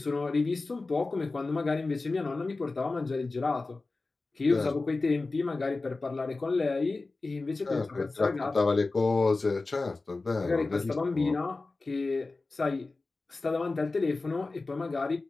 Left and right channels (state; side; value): quieter; right; 3.5 dB